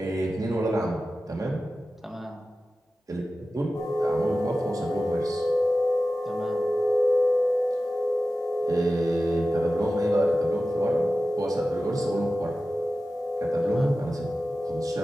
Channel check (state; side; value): normal; both; correlation 0.94